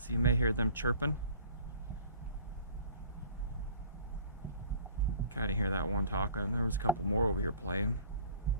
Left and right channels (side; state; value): both; inverted; correlation -0.49